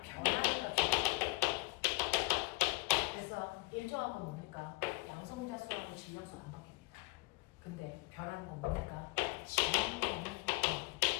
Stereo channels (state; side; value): quieter; right; 23.0 dB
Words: 변하는 값이 그래서 일정한 건 뭡니까? 양성자 수하고 질량수 안 바뀝니다. 근데 변하는 건 뭡니까?